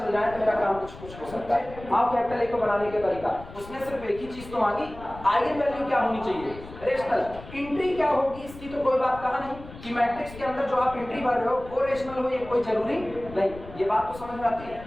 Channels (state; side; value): noise; left; rumble, 16 dB below the sound